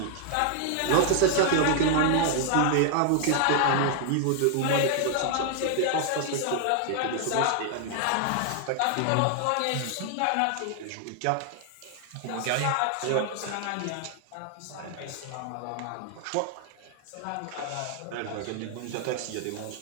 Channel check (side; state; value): both; different; correlation 0.00